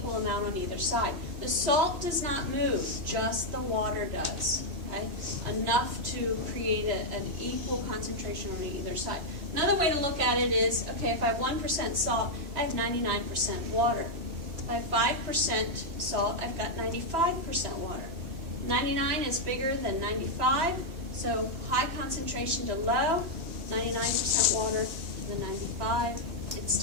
amount on either side. The salt does not move, just the water does, okay? Enough to create an equal concentration on either side. Another way to look at it is, okay, if I have 1% salt, I have 99% water. If I have 5% salt, I've got 95% water. 99 is bigger than 95, so high concentration to low, 99% water, the 95, it's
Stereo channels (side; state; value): left; late; 3.1 ms